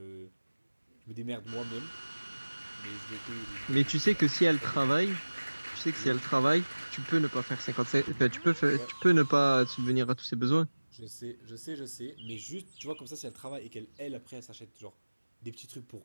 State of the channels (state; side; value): inverted; both; correlation -1.00